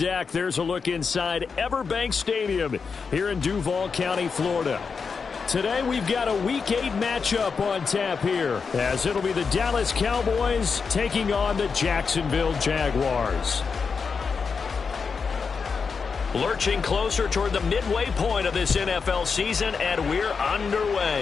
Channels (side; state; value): right; quieter; 5.4 dB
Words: there's a look inside Everbank Stadium here in Duval County, Florida. Today we've got a Week 8 matchup on tap here, as it'll be the Dallas Cowboys taking on the Jacksonville Jaguars. Lurching closer toward the midway point of this NFL season, and we're